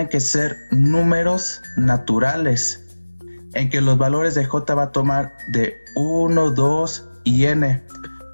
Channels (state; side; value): inverted; both; correlation -1.00